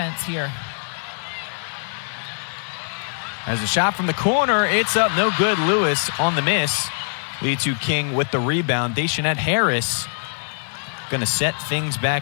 here. As a shot from the corner, it's up, no good. Lewis on the miss. Liatu King with the rebound. Dayshanette Harris going to set things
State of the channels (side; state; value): right; silent; 64 dB below the other